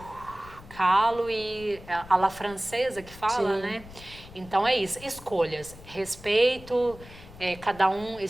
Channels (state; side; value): noise; left; rumble, 18 dB below the sound